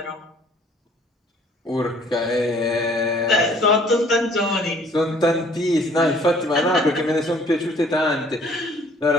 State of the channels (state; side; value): normal; both; correlation 0.57